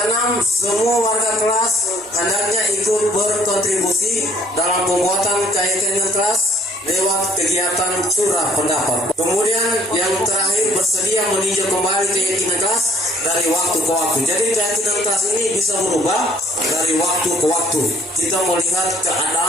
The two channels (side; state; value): both; normal; correlation 0.63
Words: semua warga kelas hendaknya ikut berkontribusi dalam pembuatan keyakinan kelas lewat kegiatan curah pendapat. Kemudian yang terakhir, bersedia meninjau kembali keyakinan kelas dari waktu ke waktu. Jadi keyakinan kelas ini bisa berubah dari waktu ke waktu. Kita melihat